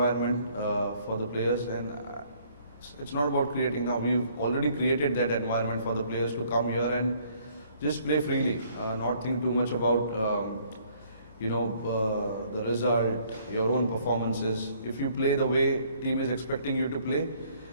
for the players. And it's not about creating now. We've already created that environment for the players to come here and just play freely, not think too much about the result, your own performances. If you play the way team is expecting you to play,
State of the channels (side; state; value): both; inverted; correlation -0.62